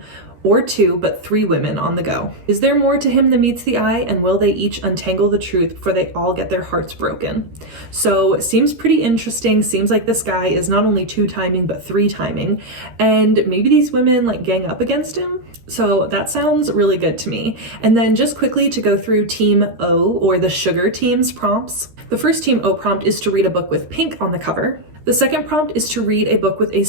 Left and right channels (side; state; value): left; late; 13 ms